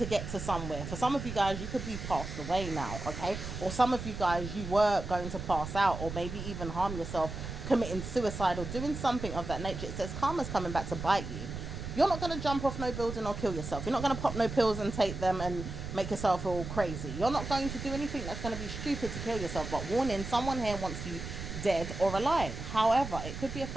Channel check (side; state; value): right; noise; rumble, 7 dB below the sound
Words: get to somewhere. For some of you guys, you could be passed away now, okay? Or some of you guys, you were going to pass out, or maybe even harm yourself, committing suicide or doing something of that nature. It says karma's coming back to bite you. You're not going to jump off no building or kill yourself. You're not going to pop no pills and take them and make yourself all crazy. You're not going to do anything that's going to be stupid to kill yourself. But warning, someone here wants you dead or alive. However, it could be a